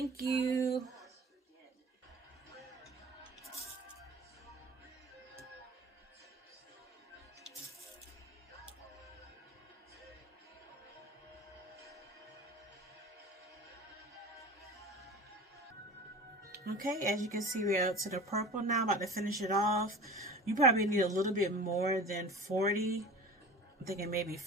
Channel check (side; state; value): both; normal; correlation 0.37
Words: you. Okay, as you can see, we're out to the purple now. I'm about to finish it off. You probably need a little bit more than 40. I'm thinking maybe